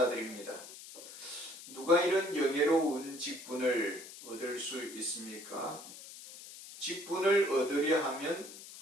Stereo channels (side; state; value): left; noise; hiss, 15 dB below the sound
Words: 누가 이런 영예로운 직분을 얻을 수 있습니까? 직분을 얻으려 하면